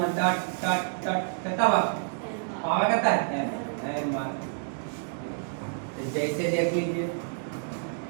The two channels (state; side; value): silent; left; digital silence